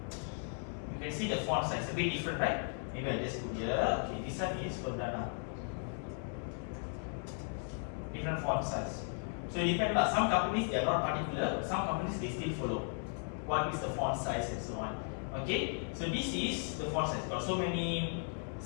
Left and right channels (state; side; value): silent; right; 54 dB below the other